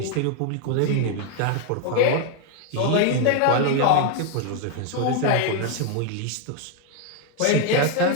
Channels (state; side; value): different; both; correlation 0.01